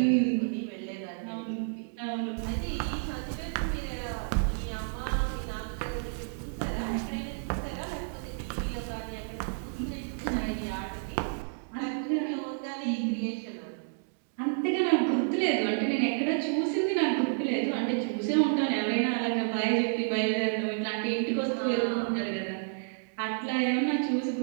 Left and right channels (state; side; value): silent; left; digital silence